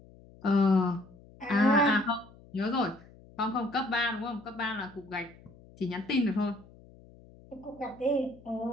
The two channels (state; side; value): noise; left; hum, 23 dB below the sound